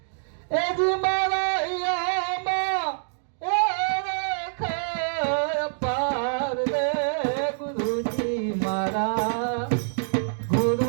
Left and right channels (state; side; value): silent; left; digital silence